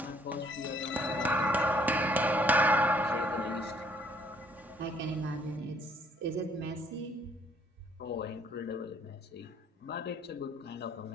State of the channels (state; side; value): normal; both; correlation 0.64